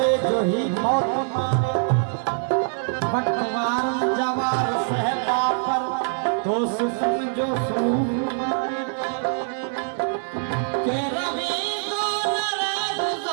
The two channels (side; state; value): left; silent; digital silence